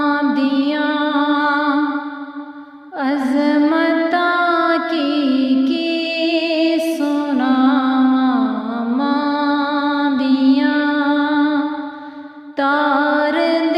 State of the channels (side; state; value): both; identical; correlation 1.00